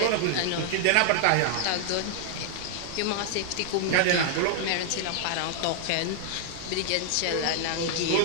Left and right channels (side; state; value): both; different; correlation 0.00